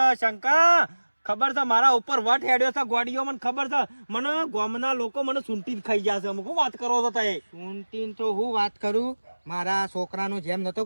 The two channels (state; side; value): inverted; both; correlation -1.00